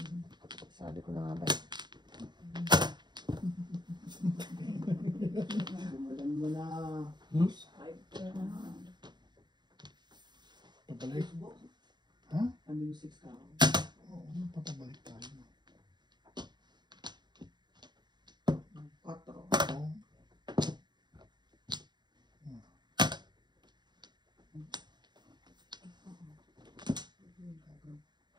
Sabi ko na nga ba eh. Walan mo na. Pabalik. Ha? Ano yung 6 ka? Oo, papabalik tayo. 4. Oo.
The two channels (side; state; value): left; late; 0.21 ms